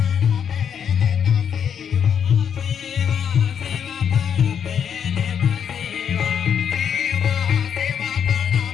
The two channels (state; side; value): quieter; right; 8.0 dB